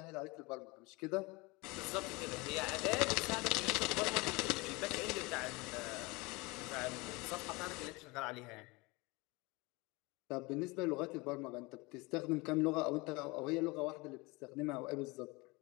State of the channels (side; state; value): right; quieter; 25.0 dB